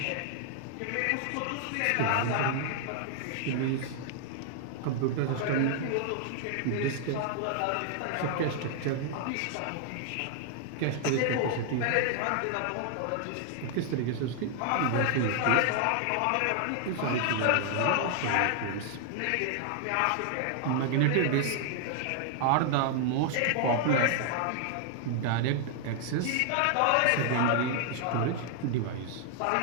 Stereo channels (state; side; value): different; both; correlation 0.00